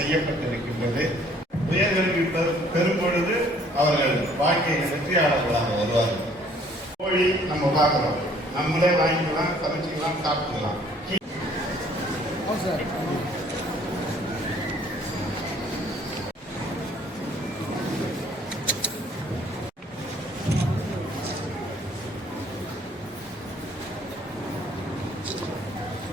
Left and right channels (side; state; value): both; normal; correlation 0.59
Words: உயர்கல்வி பெறும் பொழுது அவர்கள் வாழ்க்கையில் வெற்றியாளர்களாக வருவார்கள். கோழி நம்ம பார்க்கிறோம், நம்மளே வாங்கிக்கலாம், சமைச்சிக்கலாம், சாப்பிட்டுக்கலாம்.